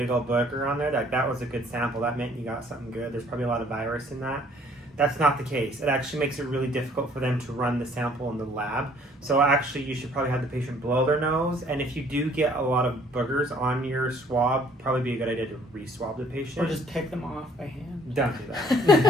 old booger on there, that was a good sample. That meant you got something good. There's probably a lot of virus in that. That's not the case. It actually makes it really difficult for them to run the sample in the lab. So actually you should probably have the patient blow their nose. And if you do get a lot of boogers on your swab, probably be a good idea to re-swab the patient. Or just take them off by hand. Don't do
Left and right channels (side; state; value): both; normal; correlation 0.59